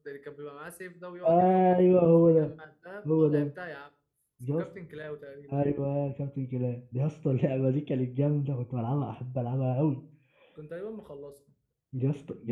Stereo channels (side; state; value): both; identical; correlation 1.00